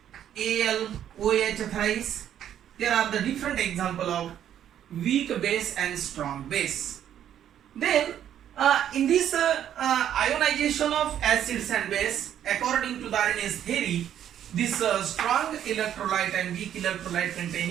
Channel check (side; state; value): left; quieter; 10.3 dB